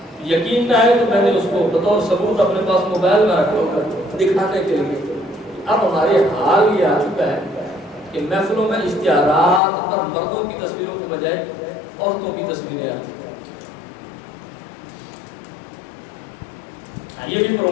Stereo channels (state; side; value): drops out; right; at 9.6 s